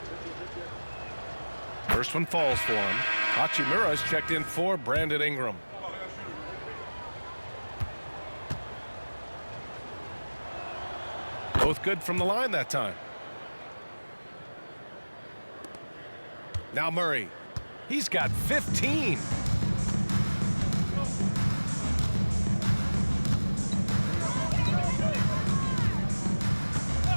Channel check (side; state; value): both; inverted; correlation -1.00